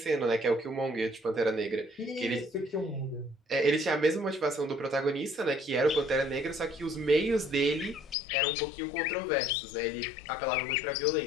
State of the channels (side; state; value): right; drops out; at 8.2 s